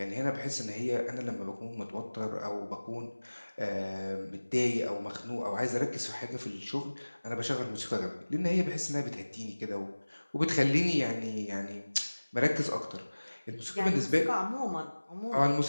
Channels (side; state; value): both; inverted; correlation -1.00